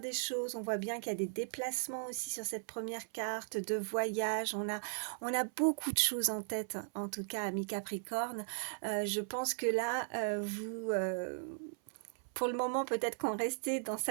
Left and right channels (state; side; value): silent; left; 53 dB below the other